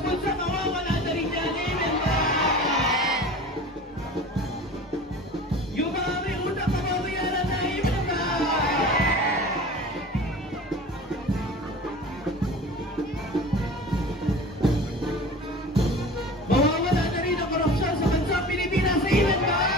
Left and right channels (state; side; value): normal; both; correlation 0.38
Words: bulsa, mawawala na rin yan. Amen ba? Yung mga may utang, mababayaran na. Amen ba? Mawawala na rin ang korupsyon sa bansang Pilipinas. Amen ba?